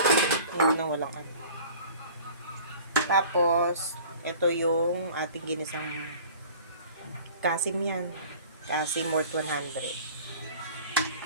Yun na walang ano. Tapos, ito yung ating ginisang kasim yan. Kasim worth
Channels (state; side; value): inverted; both; correlation -0.45